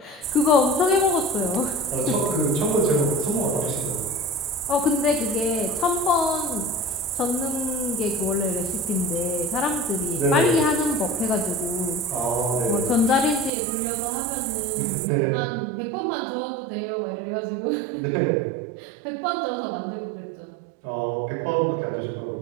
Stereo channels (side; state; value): left; drops out; at 13.5 s